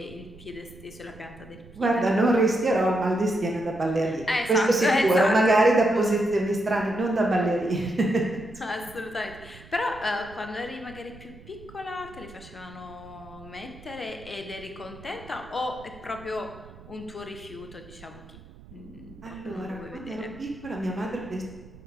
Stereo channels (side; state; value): right; noise; rumble, 20 dB below the sound